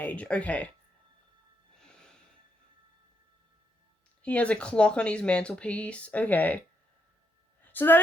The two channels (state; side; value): normal; both; correlation 0.78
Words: Okay. He has a clock on his mantelpiece. Okay. So